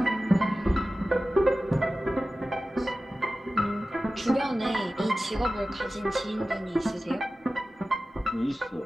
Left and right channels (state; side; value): normal; both; correlation 0.95